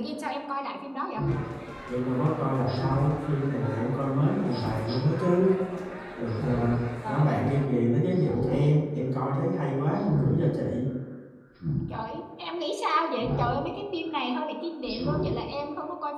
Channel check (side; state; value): both; identical; correlation 1.00